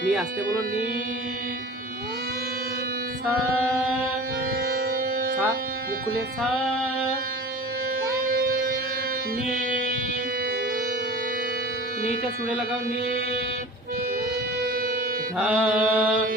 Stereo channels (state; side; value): normal; both; correlation 0.38